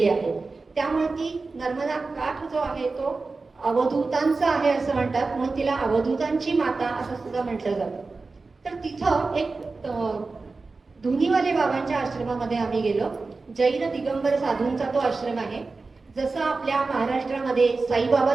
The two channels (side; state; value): left; quieter; 3.9 dB